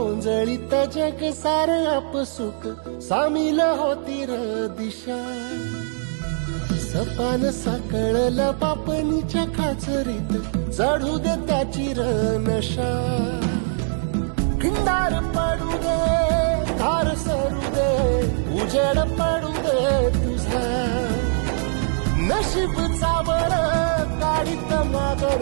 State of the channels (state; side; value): silent; left; digital silence